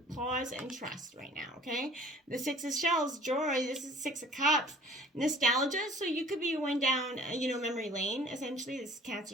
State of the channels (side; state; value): both; normal; correlation 0.49